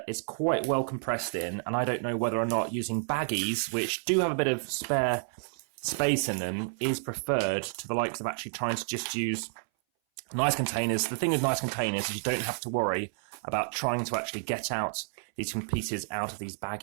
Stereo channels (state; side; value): silent; left; 58 dB below the other